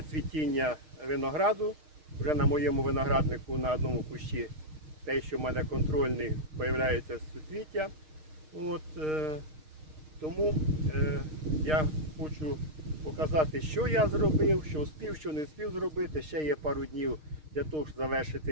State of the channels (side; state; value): left; late; 6.5 ms